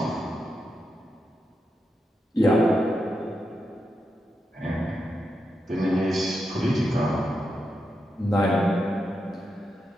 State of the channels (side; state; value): both; normal; correlation 0.86